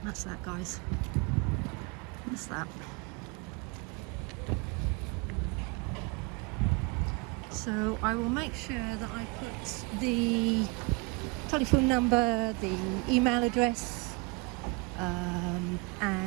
That's that, guys. That's that. So I will make sure that I put the telephone number, the email address,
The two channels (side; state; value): left; quieter; 28.6 dB